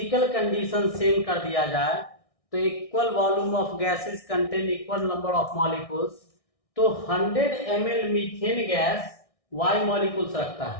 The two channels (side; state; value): right; late; 1.6 ms